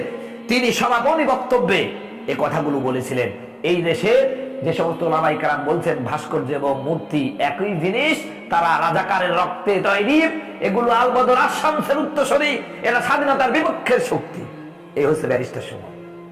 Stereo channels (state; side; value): identical; both; correlation 1.00